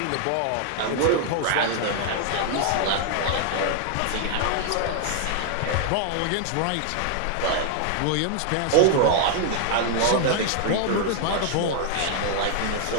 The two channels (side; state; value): both; different; correlation 0.00